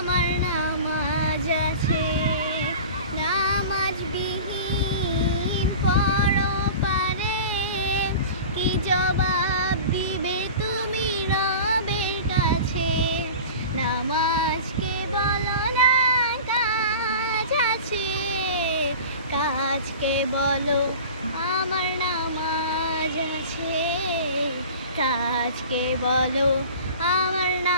নামাজ আছে। নামাজ বিহীন পরপারে কি জবাব দিবে তুমি রবের কাছে? নামাজকে বলো না কাজ আছে, কাজকে বলো আমার নামাজ আছে। কাজকে বলো আমার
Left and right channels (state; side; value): inverted; both; correlation -0.37